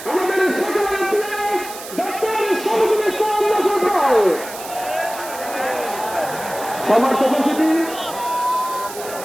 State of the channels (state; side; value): noise; right; hiss, 13 dB below the sound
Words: আমাদের সকলের প্রিয় ডক্টর শহীদুল ইসলাম মাসুদ ভাই। সমর্থ উপস্থিতি